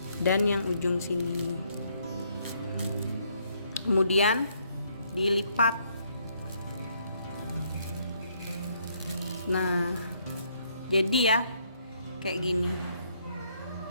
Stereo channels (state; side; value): inverted; both; correlation -0.71